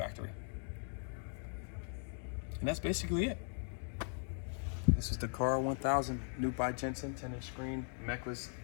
And that's basically it. This is the CAR1000, new by Jensen, 10-inch screen, Mechless,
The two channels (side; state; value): right; silent; 52 dB below the other